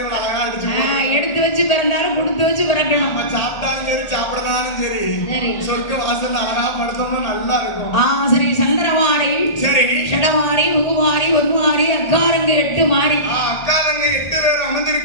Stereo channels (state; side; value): late; right; 1.4 ms